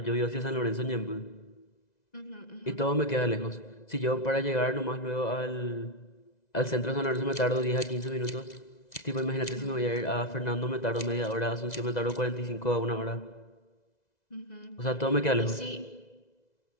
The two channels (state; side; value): late; right; 2.0 ms